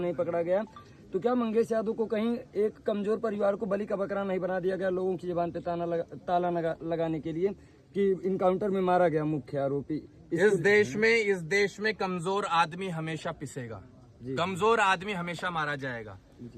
पकड़ा गया, तो क्या मंगेश यादव को कहीं एक कमजोर परिवार को बलि का बकरा नहीं बना दिया गया लोगों की जुबान पे ताला लगाने के लिए कि इनकाउंटर में मारा गया मुख्य आरोपी? इस देश में कमजोर आदमी हमेशा पिसेगा, कमजोर आदमी हमेशा मारा जाएगा।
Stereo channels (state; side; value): identical; both; correlation 1.00